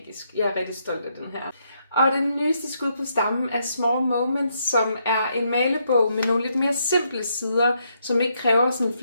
Jeg er rigtig stolt af den her. Og den nyeste skud på stammen er Small Moments, som er en malebog med nogle lidt mere simple sider, som ikke kræver sådan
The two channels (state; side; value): inverted; both; correlation -0.77